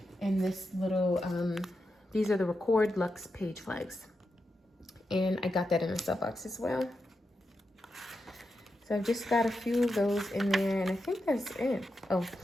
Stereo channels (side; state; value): both; normal; correlation 0.87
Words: and this little, these are the Record Luxe page flags. And I got that in a sub box as well. So I've just got a few of those in there, and I think that's it. Oh,